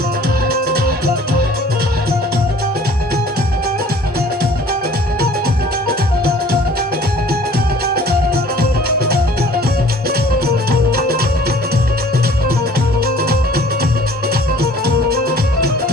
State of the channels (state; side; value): normal; both; correlation 0.51